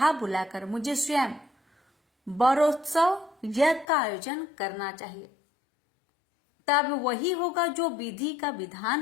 बुलाकर मुझे स्वयं वरोत्सव यज्ञ का आयोजन करना चाहिए। तब वही होगा जो विधि का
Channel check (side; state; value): right; drops out; at 3.9 s